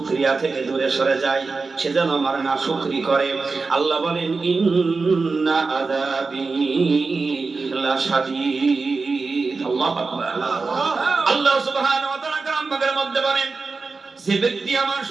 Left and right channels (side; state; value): left; quieter; 4.2 dB